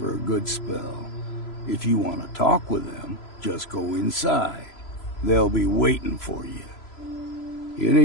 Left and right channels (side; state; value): right; late; 3.0 ms